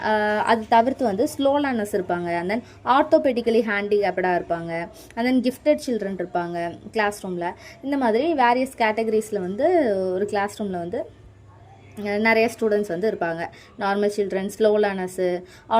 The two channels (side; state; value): both; identical; correlation 1.00